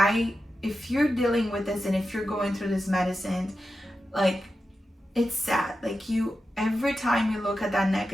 if you're dealing with this, and if you're going through this medicine, like, it's sad. Like, every time you look at that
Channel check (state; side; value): normal; both; correlation 0.90